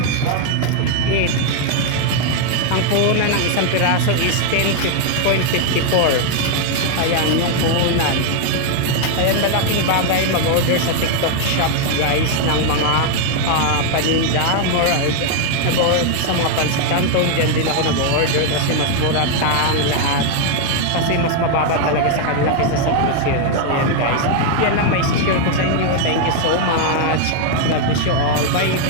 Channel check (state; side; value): different; both; correlation 0.00